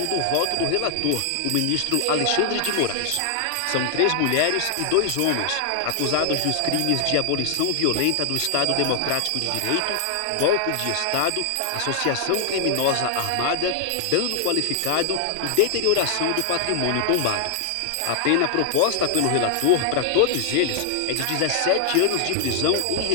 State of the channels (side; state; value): both; different; correlation 0.00